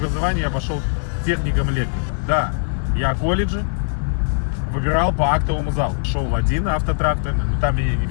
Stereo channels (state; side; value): silent; right; digital silence